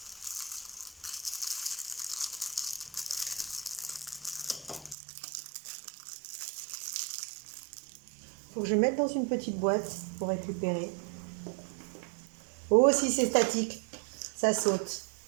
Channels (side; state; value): left; drops out; at 5.0 s